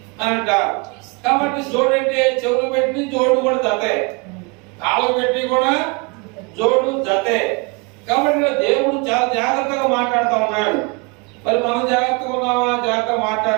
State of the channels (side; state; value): left; quieter; 29.8 dB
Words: అని అంటారు. కాబట్టి జోడు అంటే చెవులు పెట్టి జోడు కూడా జతే, కాళ్ళు పెట్టి కూడా జోడు జతే. కాబట్టి దేవుడు చాలా జాగ్రత్తగా మాట్లాడుతూ ఉన్నాడు. మరి మనం జాగ్రత్తగా ఉన్నామా, జాగ్రత్తగా